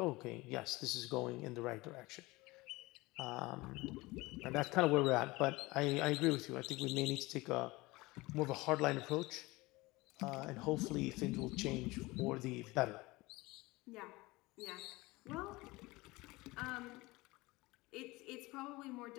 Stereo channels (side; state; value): right; quieter; 21.7 dB